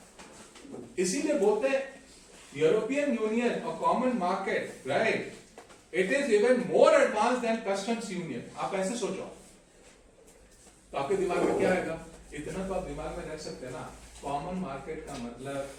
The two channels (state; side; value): identical; both; correlation 1.00